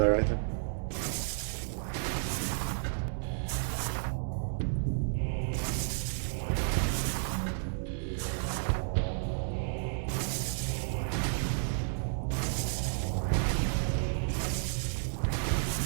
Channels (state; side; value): silent; left; 56 dB below the other